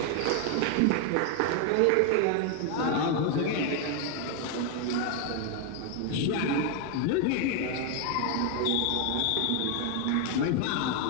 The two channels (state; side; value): different; both; correlation 0.01